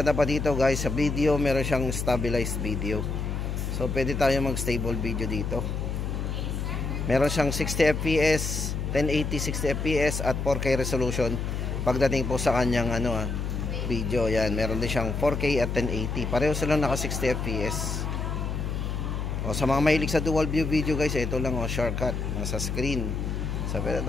pa dito guys, sa video meron siyang stabilized video. So pwede tayo mag stable video dito. Meron siyang 60 fps, 1080 60 fps at 4K resolution pagdating po sa kanyang video. Yan, meron din siyang 4K at 1080. Pareho silang naka 60 fps. O sa mga mahilig sa dual view video guys, ito lang shortcut nasa screen. So pwede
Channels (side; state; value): left; noise; hum, 2 dB below the sound